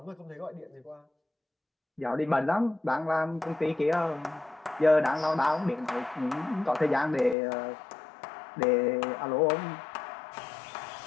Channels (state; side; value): drops out; right; at 7.4 s